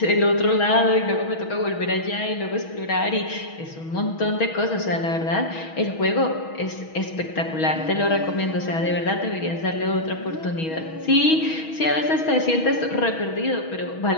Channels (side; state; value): right; late; 6.2 ms